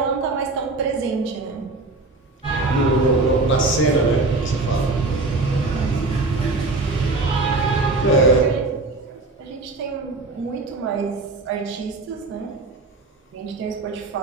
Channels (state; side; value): quieter; left; 3.3 dB